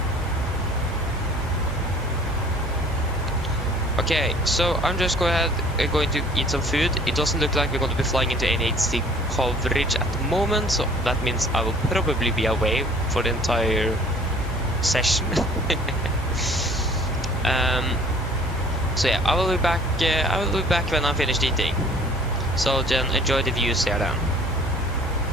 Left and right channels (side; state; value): both; normal; correlation 0.52